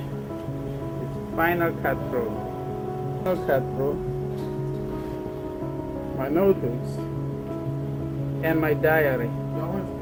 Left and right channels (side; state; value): both; identical; correlation 1.00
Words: It's Final Cut Pro. Final Cut Pro. My notebooks and my diary.